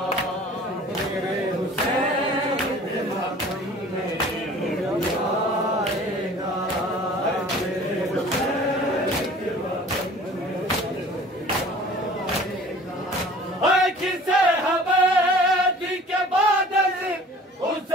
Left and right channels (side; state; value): both; normal; correlation 0.47